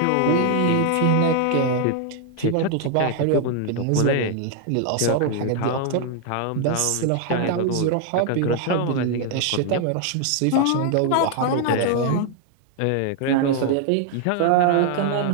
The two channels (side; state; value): both; different; correlation 0.00